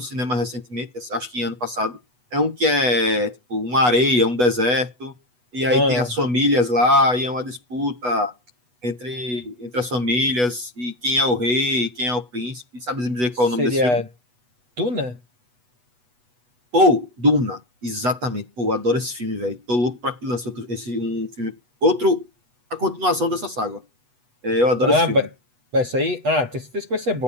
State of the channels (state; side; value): late; left; 8.1 ms